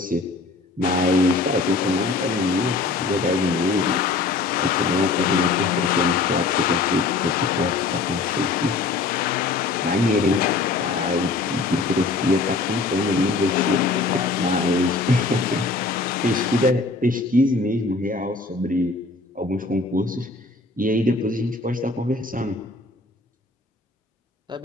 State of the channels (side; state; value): right; quieter; 3.7 dB